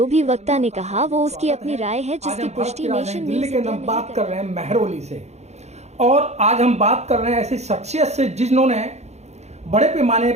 भी वक्ता ने कहा वो उसकी अपनी राय है, जिसकी पुष्टि नेशन दिल्ली न्यूज़ के हम बात कर रहे हैं मेहरौली से। और आज हम बात कर रहे हैं ऐसी शख्सियत से जिन्होंने बड़े पैमाने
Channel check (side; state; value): left; late; 0.32 ms